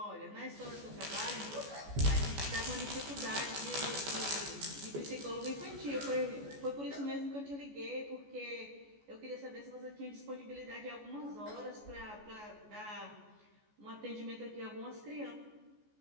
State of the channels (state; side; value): late; left; 14 ms